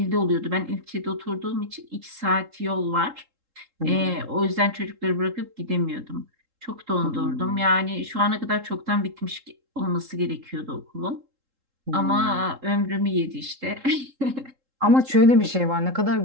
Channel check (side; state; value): left; late; 3.7 ms